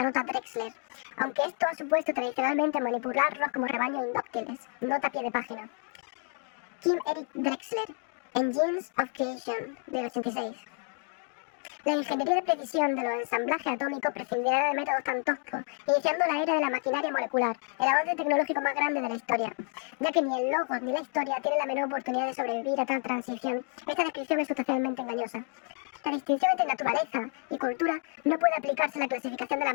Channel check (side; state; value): right; quieter; 39.8 dB